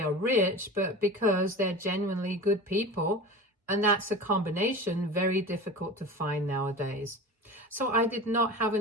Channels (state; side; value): normal; both; correlation 0.33